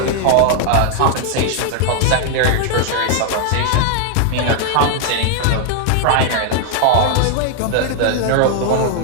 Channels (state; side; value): different; both; correlation 0.00